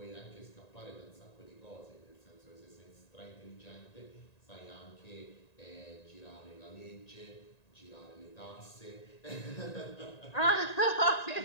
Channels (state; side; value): late; right; 1.9 ms